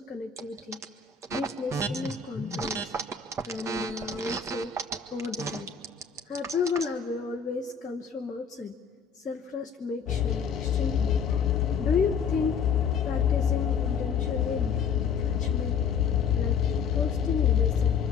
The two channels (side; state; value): right; quieter; 6.2 dB